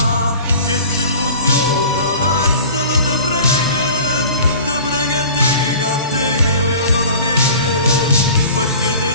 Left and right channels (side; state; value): both; inverted; correlation -0.42